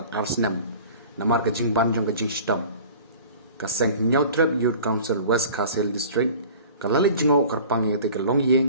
arsnam namar ka jing ban jong ka jing stam ka seng nyautrep youth council West Castle District kalali jingo karpang yeng te ka long yeng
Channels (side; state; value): both; inverted; correlation -0.43